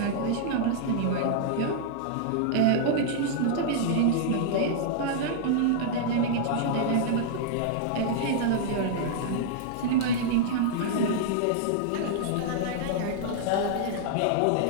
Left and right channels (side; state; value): both; different; correlation -0.01